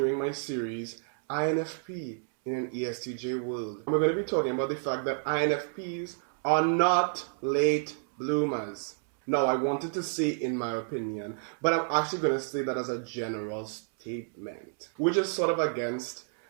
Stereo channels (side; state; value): left; silent; 58 dB below the other